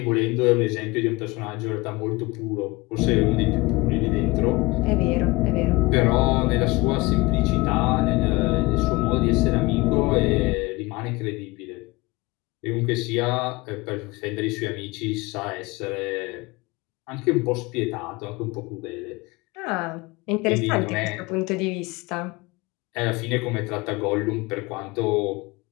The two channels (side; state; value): right; quieter; 23.0 dB